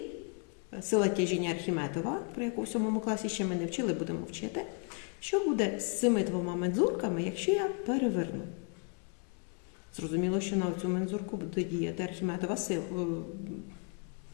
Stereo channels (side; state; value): right; quieter; 37.9 dB